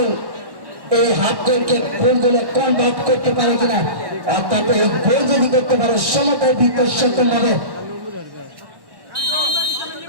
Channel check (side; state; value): left; late; 1.1 ms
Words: এই হাফ গোলকে গোল গোলে কনভার্ট করতে পারে কিনা, অর্থাৎ এই গোল যদি করতে পারে সমতার ভিতর সক্ষম হবে।